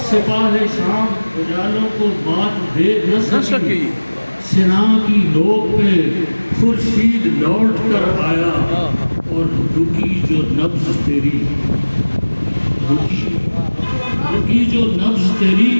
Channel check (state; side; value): inverted; both; correlation -1.00